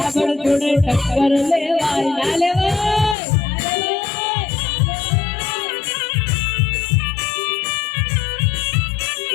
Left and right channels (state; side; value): drops out; right; at 3.2 s